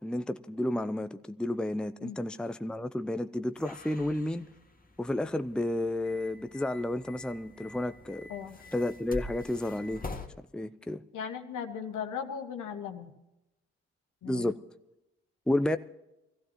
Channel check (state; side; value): normal; both; correlation 0.87